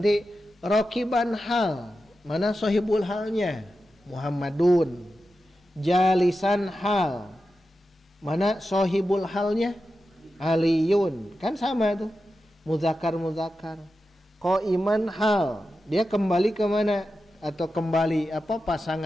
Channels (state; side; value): normal; both; correlation 0.91